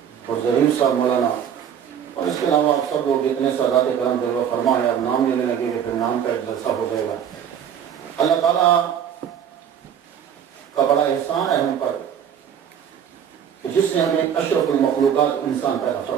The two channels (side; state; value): left; quieter; 8.6 dB